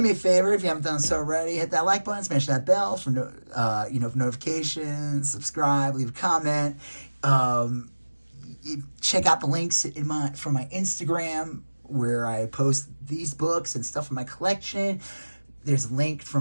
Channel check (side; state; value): both; inverted; correlation -1.00